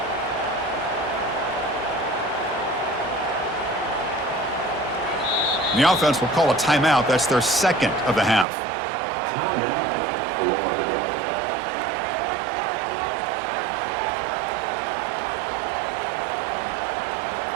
And the offense will call a timeout. That's their second of the half.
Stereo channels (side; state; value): left; drops out; at 8.5 s